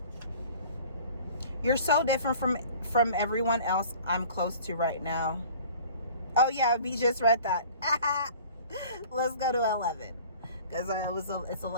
You're so different from everyone else I'm close to right now. Oh yeah, we just read that. Let's go to 11, because it's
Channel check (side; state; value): both; inverted; correlation -0.47